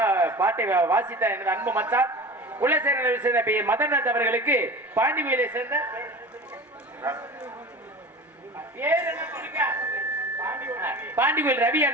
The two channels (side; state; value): both; normal; correlation 0.35